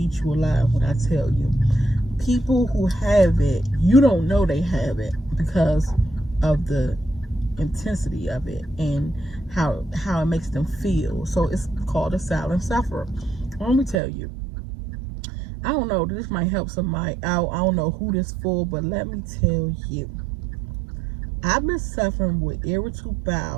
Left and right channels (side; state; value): left; drops out; at 14.0 s